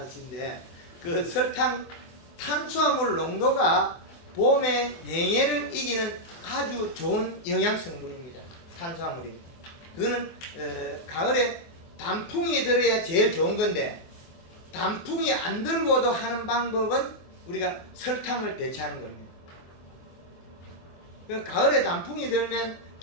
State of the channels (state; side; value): late; right; 24 ms